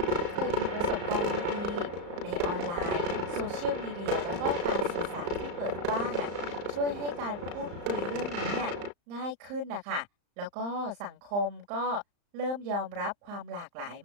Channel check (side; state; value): left; late; 35 ms